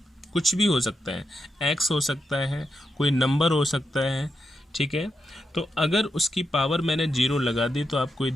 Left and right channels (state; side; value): normal; both; correlation 0.85